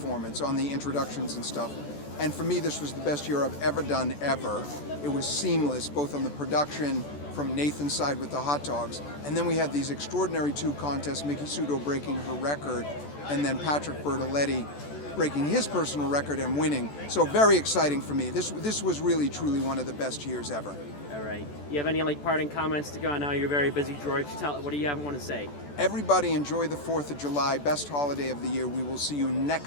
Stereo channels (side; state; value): right; late; 14 ms